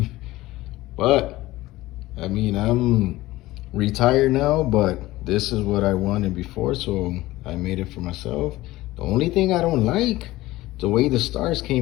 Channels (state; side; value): quieter; right; 17.7 dB